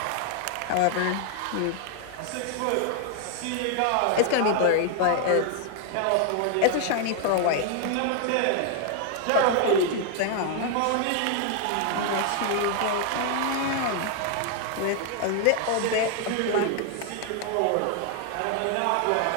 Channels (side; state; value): both; different; correlation 0.00